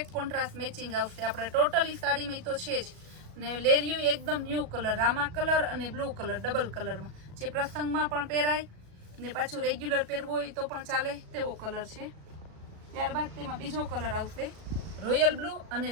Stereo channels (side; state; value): left; late; 37 ms